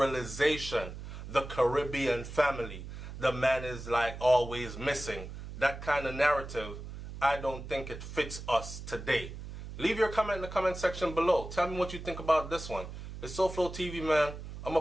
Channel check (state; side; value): noise; right; hum, 10 dB below the sound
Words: The Caribbean family, the man is like always missing. That kind of narrative, I don't think it fits us today. Leave your comment in the comment section below. Tell me what you think about this one. It's SouFLoTV, man. I'm